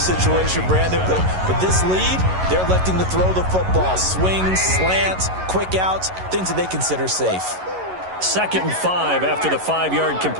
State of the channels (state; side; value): late; left; 11 ms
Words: situation, Brandon. But this lead, they're electing to throw the football. Swings, slants, quick outs, things that they consider safe. 2nd and 5 after the 5-yard